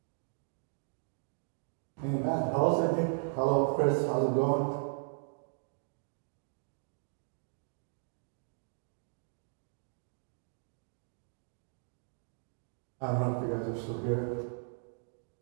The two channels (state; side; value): silent; left; digital silence